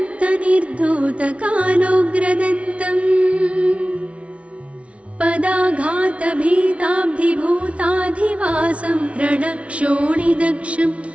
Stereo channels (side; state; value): left; late; 0.062 ms